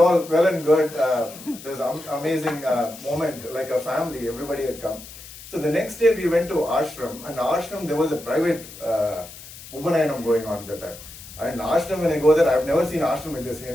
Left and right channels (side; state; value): left; noise; hiss, 16 dB below the sound